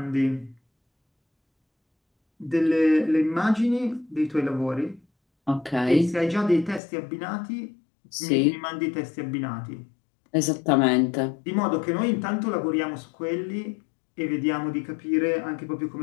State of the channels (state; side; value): drops out; right; at 6.8 s